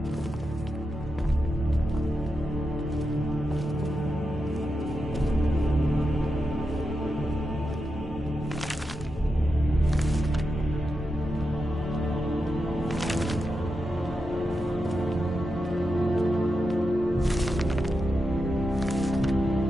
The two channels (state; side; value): normal; both; correlation 0.88